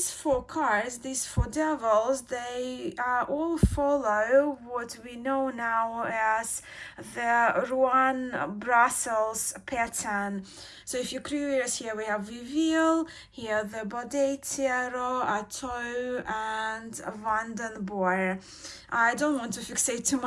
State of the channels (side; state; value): both; identical; correlation 1.00